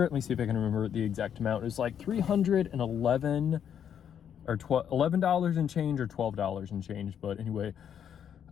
let me see if I can remember the exact amount. It was like 311 or $11 and change or $12 and change. But anyway,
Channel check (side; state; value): right; quieter; 8.7 dB